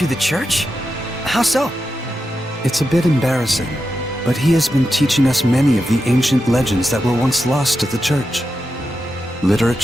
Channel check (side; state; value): both; normal; correlation 0.89